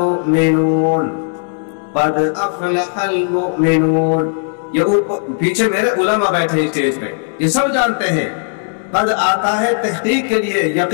قد افلح المؤمنون۔ یہ پیچھے میرے علماء بیٹھے ہیں اسٹیج پہ، یہ سب جانتے ہیں قد آتا ہے تحقیق کے لیے،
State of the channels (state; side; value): silent; right; 69 dB below the other